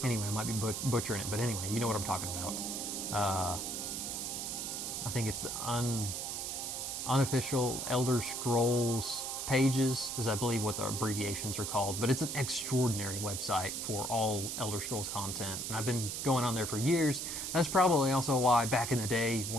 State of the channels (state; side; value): noise; right; hiss, 4 dB below the sound